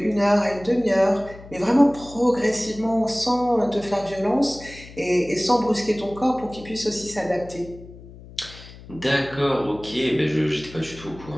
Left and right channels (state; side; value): noise; left; hum, 18 dB below the sound